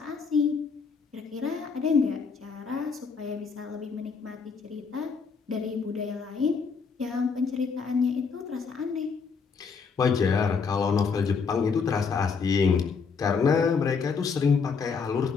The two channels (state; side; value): quieter; right; 5.4 dB